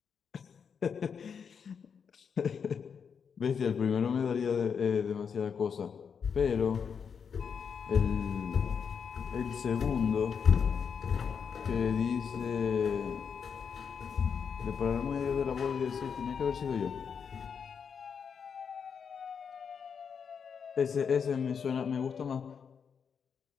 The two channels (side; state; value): right; quieter; 6.6 dB